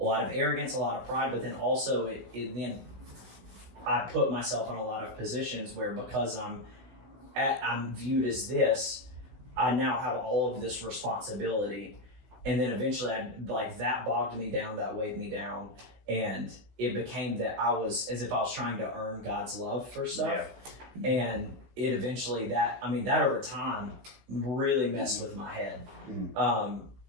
lot of arrogance, a lot of pride, but then also then I put myself in a lot of positions where because I'm viewed as this, I now have all of this responsibility. And then eventually that bogged me down, that weighed me down. And it became that I was as if I was trying to earn God's love for stuff. Yeah. And it eventually that over time really messed with my head in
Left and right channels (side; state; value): left; late; 16 ms